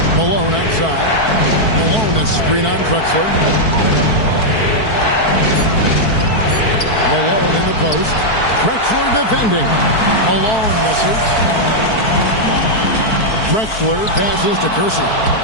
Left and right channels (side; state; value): right; late; 4.6 ms